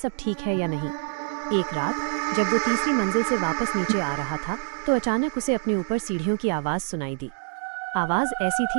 ठीक है या नहीं। एक रात जब वो तीसरी मंजिल से वापस नीचे आ रहा था तो अचानक उसे अपने ऊपर सीढ़ियों की आवाज़ सुनाई दी। आवाज़ ऐसी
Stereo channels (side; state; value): left; silent; 61 dB below the other